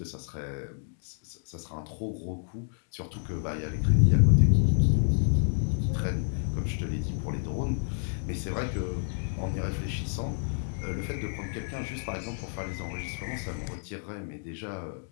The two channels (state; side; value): silent; right; digital silence